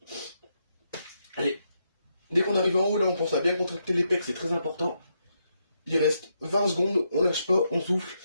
Allez, dès qu'on arrive en haut, là, on pense à bien contracter les pecs, c'est très important. Il reste 20 secondes, on lâche pas, on souffle,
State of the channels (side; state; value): both; inverted; correlation -0.80